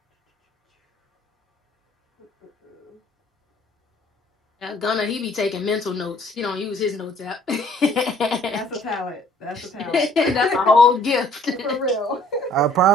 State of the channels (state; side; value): normal; both; correlation 0.58